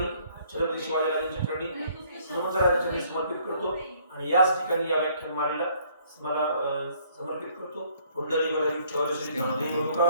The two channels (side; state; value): both; inverted; correlation -0.62